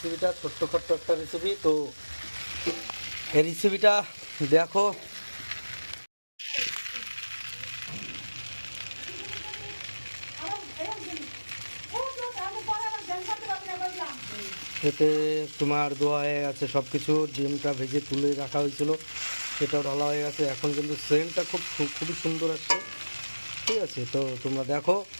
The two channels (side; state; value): both; inverted; correlation -1.00